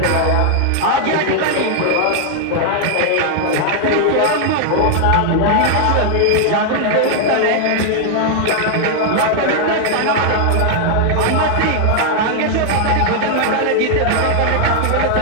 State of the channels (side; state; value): both; different; correlation 0.00